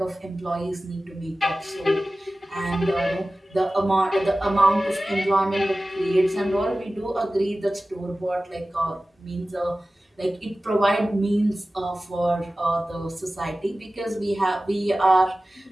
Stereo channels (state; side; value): normal; both; correlation 0.96